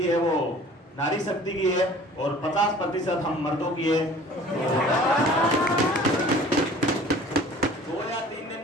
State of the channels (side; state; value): both; normal; correlation 0.47